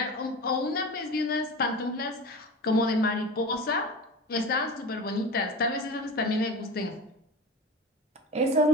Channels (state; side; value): normal; both; correlation 0.30